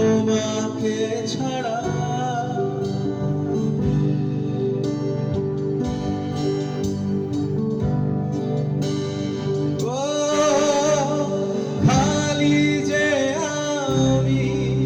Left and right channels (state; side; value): identical; both; correlation 1.00